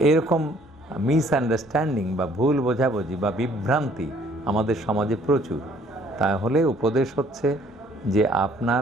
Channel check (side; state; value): both; normal; correlation 0.60